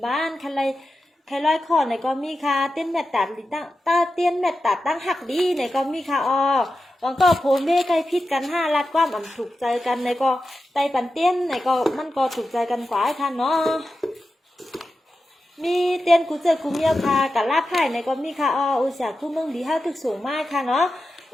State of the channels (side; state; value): both; normal; correlation 0.91